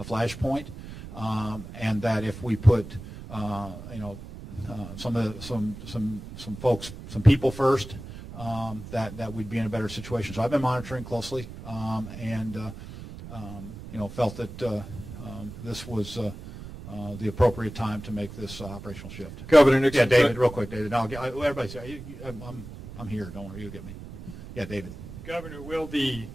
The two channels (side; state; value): right; noise; rumble, 12 dB below the sound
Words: flashpoint, and that if we put some people first, that we'd be in a better situation. So I've been monitoring closely, and felt that this was the appropriate time to make this operational shift. Governor Nixon. Yeah, David, real quick, David. Everybody say, I'm here. Don't worry, you'll get me. Yeah, David. Governor, will the